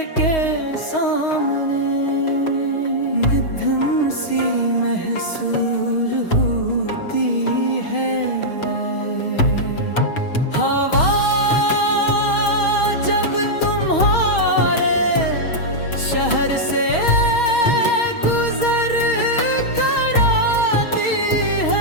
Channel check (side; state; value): right; late; 6.3 ms